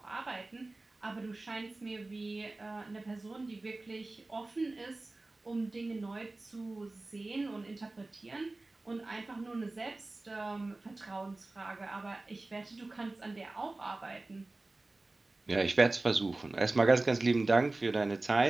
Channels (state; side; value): quieter; left; 3.1 dB